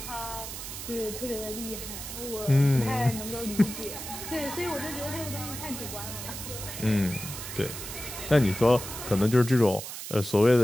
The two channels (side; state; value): right; noise; hiss, 8 dB below the sound